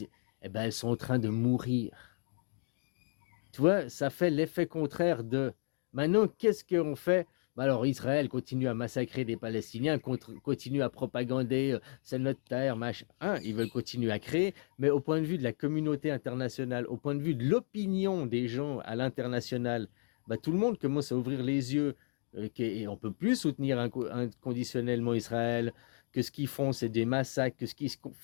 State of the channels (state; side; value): silent; right; 55 dB below the other